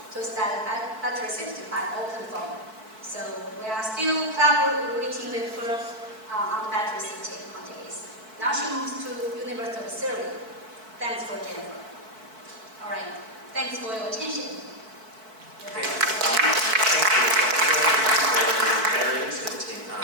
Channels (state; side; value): late; left; 4.6 ms